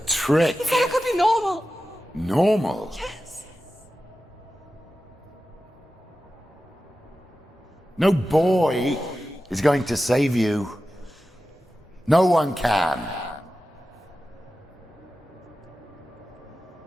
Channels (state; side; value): normal; both; correlation 0.93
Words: trick. He said I could be normal. Normal. Yes. No boy is going to save you. No one can.